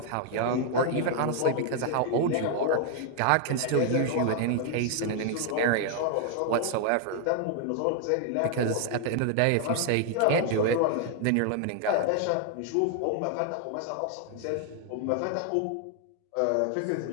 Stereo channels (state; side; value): different; both; correlation 0.00